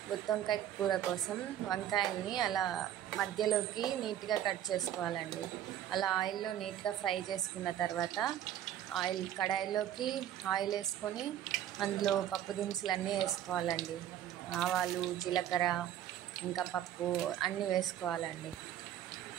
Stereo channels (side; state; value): left; quieter; 11.2 dB